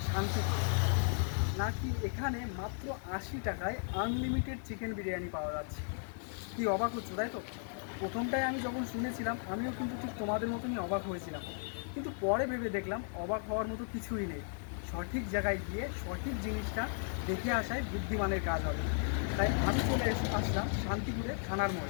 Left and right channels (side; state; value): right; silent; 54 dB below the other